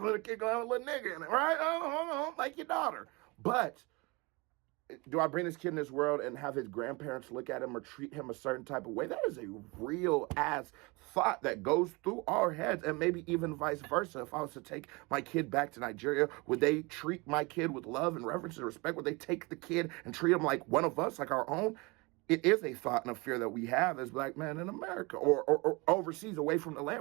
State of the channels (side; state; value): left; quieter; 26.3 dB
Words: the kid going to have a little nigga in it, right? Like your daughter. But do I bring this kid in this world and have his grandparents look at him or treat him a certain type of way? That is a real ass thought that goes through our heads, and maybe even vice versa. If I was to take my kid back to Nigeria, would they treat my kid with love and reverence and respect? Would they take the kid and treat him like one of us, like our own? It is a thought and a fear that we have as black men in America or overseas, away from the